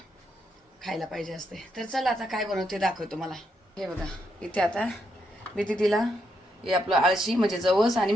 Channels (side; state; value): both; normal; correlation 0.79